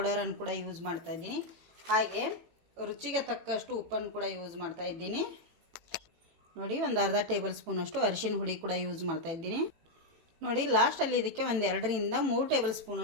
ಕೂಡ ಯೂಸ್ ಮಾಡ್ತಾಯಿದ್ದೀನಿ. ಹಾಗೆ ರುಚಿಗೆ ತಕ್ಕಷ್ಟು ಉಪ್ಪನ್ನು ಕೂಡ ಯೂಸ್ ಮಾಡ್ತಾಯಿದ್ದೀನಿ. ನೋಡಿ, ಒಂದು ಅರ್ಧ ಟೇಬಲ್ ಸ್ಪೂನಷ್ಟು ಅರಿಶಿನ ಹುಡಿ ಕೂಡ ಯೂಸ್ ಮಾಡ್ತಾಯಿದ್ದೀನಿ. ನೋಡಿ, ಲಾಸ್ಟಲ್ಲಿ ಇದಕ್ಕೆ 2-3 ಟೇಬಲ್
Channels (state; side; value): late; left; 18 ms